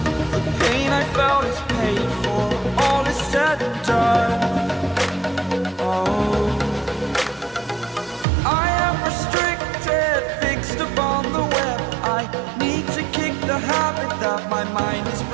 The pain I felt is paid for, all is said and done. Oh, I am restricted, fixed upon the web. I need to kick the habit that my mind is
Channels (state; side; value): drops out; left; at 8.2 s